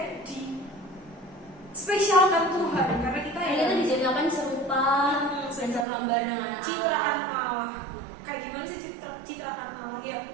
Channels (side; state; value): left; drops out; at 5.9 s